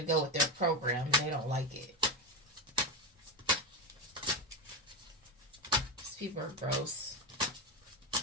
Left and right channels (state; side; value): normal; both; correlation 0.14